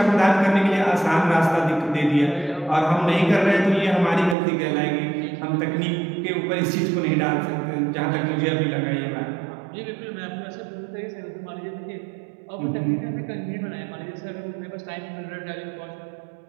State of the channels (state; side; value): drops out; left; at 4.4 s